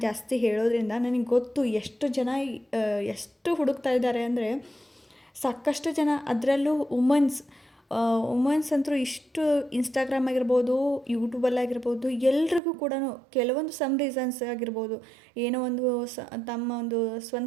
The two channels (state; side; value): drops out; left; at 12.6 s